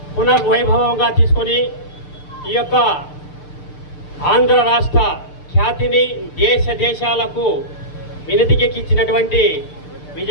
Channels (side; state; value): right; late; 6.7 ms